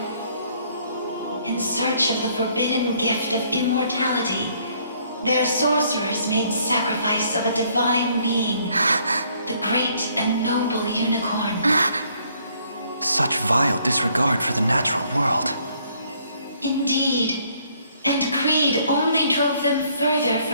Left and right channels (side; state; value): both; inverted; correlation -0.65